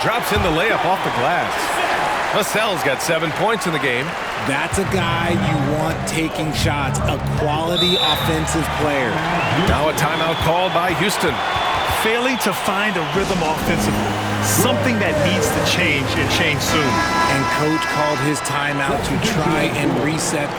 drops in the layup off the glass. Vassell's got 7 points in the game. That's a guy you want taking shots, a quality offensive player. Now a timeout called by Houston. Failing to find a rhythm offensively, something that needs to change and change soon. And coach called his timeout to try and reset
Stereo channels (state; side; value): identical; both; correlation 1.00